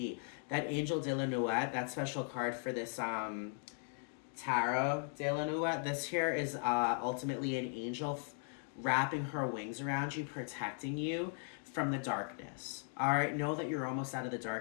That Angel de la Nuit, that special card for this Tarot de la Nuit, this here is ultimately an angel wrapping her wings around you, protecting you from the darkness. All right, know that you're almost out of the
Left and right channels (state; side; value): silent; right; 52 dB below the other